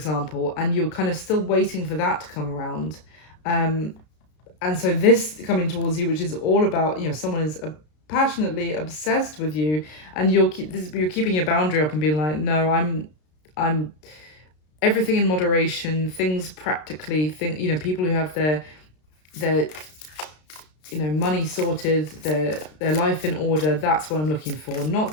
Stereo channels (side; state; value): right; late; 33 ms